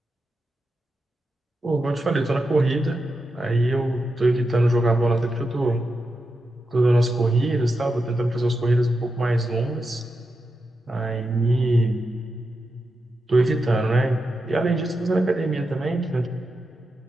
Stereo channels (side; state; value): both; normal; correlation 0.88